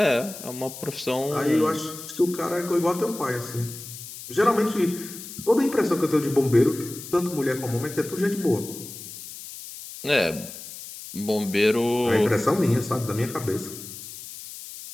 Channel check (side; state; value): left; noise; hiss, 12 dB below the sound